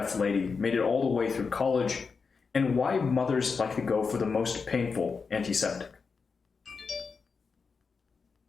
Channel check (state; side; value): quieter; right; 5.1 dB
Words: lady made it all the way through college, and why mothers like to go for the most painful antiseptic.